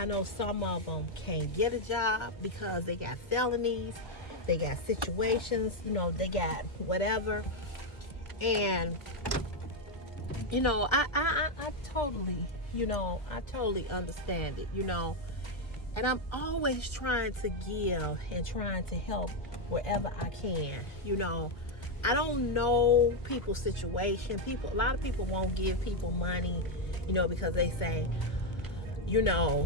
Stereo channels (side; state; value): right; late; 1.2 ms